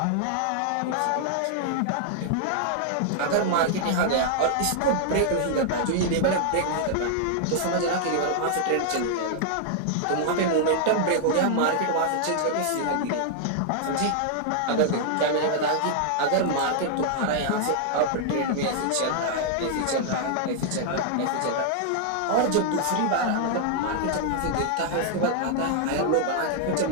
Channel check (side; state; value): both; different; correlation -0.01